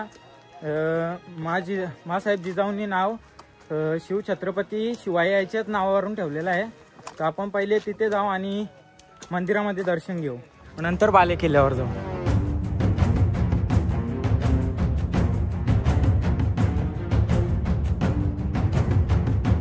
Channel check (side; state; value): both; identical; correlation 1.00